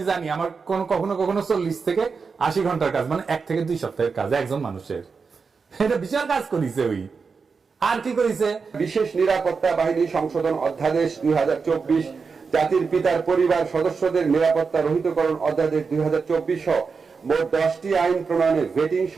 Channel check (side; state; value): left; quieter; 5.1 dB